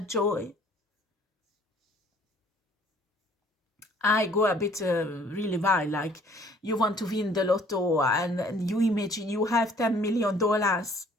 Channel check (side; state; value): both; normal; correlation 0.57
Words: joy. I go a bit really wild, like you want to win the lotto and you imagine you have $10 million,